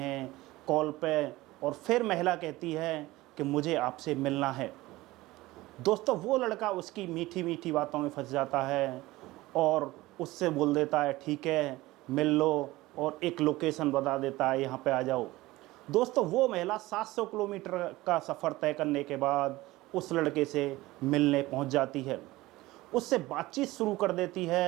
कॉल पे। और फिर महिला कहती है कि मुझे आपसे मिलना है। दोस्तों वो लड़का उसकी मीठी मीठी बातों में फंस जाता है और उससे बोल देता है ठीक है मिल लो, और एक लोकेशन बता देता है यहाँ पे आ जाओ। दोस्तों वो महिला 700 किलोमीटर का सफ़र तय करने के बाद उस लड़के से मिलने पहुँच जाती है, उससे बातचीत शुरू कर देती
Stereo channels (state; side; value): quieter; left; 18.8 dB